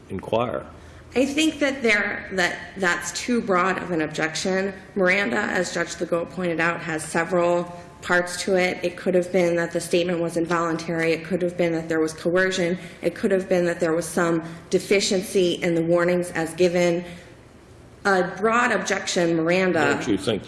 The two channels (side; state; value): both; identical; correlation 1.00